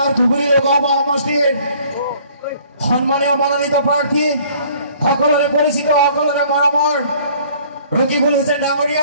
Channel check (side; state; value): both; inverted; correlation -0.56